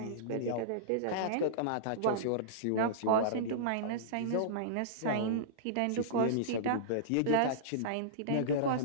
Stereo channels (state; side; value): different; both; correlation -0.03